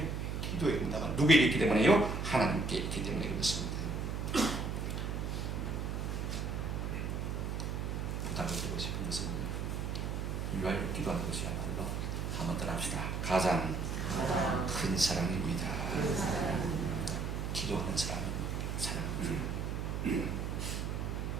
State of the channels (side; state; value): right; noise; hum, 2 dB below the sound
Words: 기도의 응답은 누구에게 있기 때문에요? 하나님께 있기 때문에 그렇습니다. 부탁을 드리고 싶은 것은 위하여 기도하는 것이야말로 한번 더 합시다. 가장 큰 사랑입니다. 기도하는 사람은 사랑입니다.